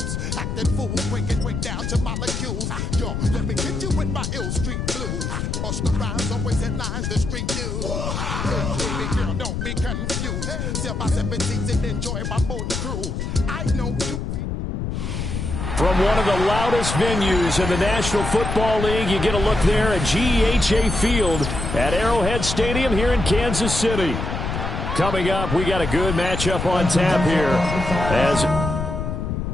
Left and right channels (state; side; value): noise; left; rumble, 3 dB below the sound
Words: Acting fool, break down to molecules. Yo, let me hit you with my ill street blues. Bust the rhymes, always in lines, the street news. Baby girl, don't be confused. Sell my 7 seats and enjoy my boat cruise. I know you. From one of the loudest venues in the National Football League, you get a look there at GEHA Field at Arrowhead Stadium here in Kansas City. Coming up, we got a good matchup on tap here as